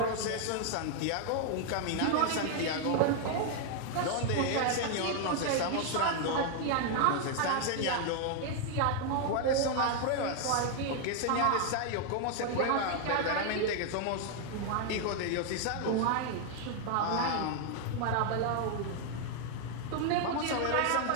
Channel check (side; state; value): both; different; correlation 0.00